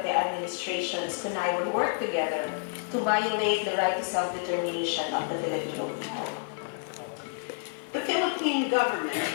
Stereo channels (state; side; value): silent; right; 58 dB below the other